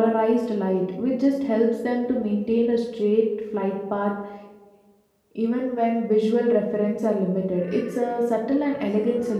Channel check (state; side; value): identical; both; correlation 1.00